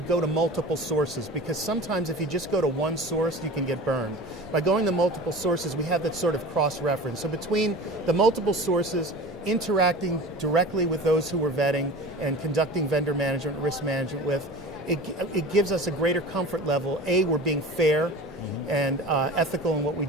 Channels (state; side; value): normal; both; correlation 0.36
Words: go to multiple sources, because sometimes if you just go to one source, you can get burned. By going to multiple sources, we have that sort of cross-reference. So between the multiple sources, interacting directly with those who we're vetting and conducting vendor management, risk management with, it gives us a greater comfort level. A, we're being fair and ethical in what we